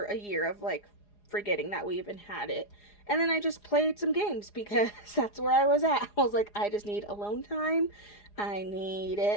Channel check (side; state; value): right; late; 4.8 ms